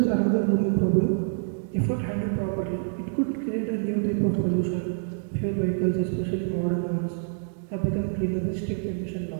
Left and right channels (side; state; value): left; silent; digital silence